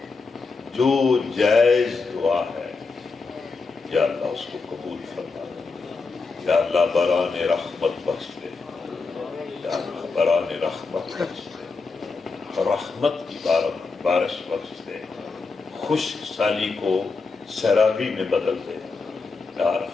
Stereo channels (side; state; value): right; quieter; 4.2 dB